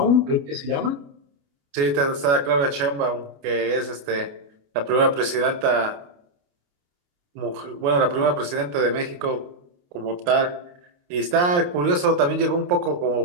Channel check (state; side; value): late; left; 28 ms